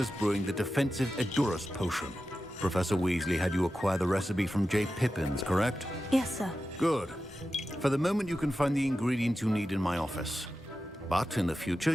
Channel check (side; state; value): both; normal; correlation 0.92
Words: brewing the defensive Edurus potion. Professor Weasley had you acquire the recipe from J. Pippins, correct? Yes, sir. Good. For the moment, you can find the ingredients you need in my office. But in the future,